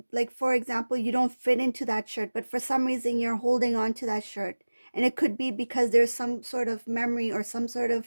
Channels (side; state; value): both; inverted; correlation -1.00